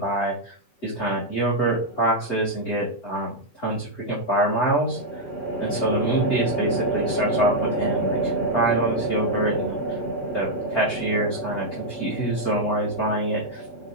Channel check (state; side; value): late; right; 8.0 ms